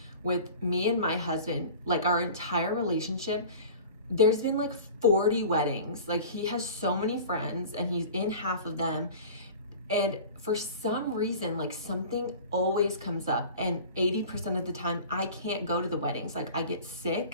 with me and my husband, like our entire relationship. There's been like 40 weddings. Like, he has so many friends and he's in half of them. And for some reason, like, something always comes up, and 80% of the time I can't go to the weddings. Like, I get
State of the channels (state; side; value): inverted; both; correlation -0.40